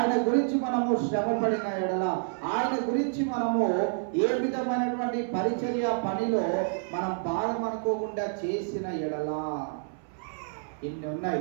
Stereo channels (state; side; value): silent; left; 59 dB below the other